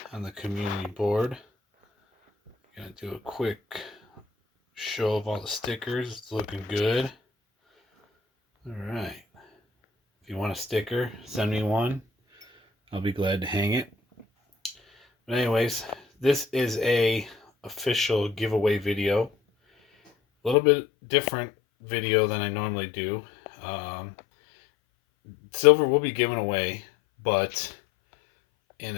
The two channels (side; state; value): right; drops out; at 20.6 s